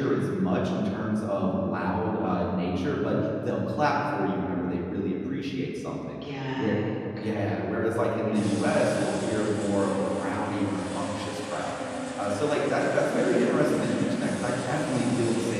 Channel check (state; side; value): identical; both; correlation 1.00